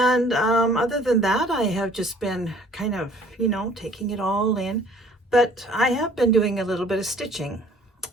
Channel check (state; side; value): normal; both; correlation 0.54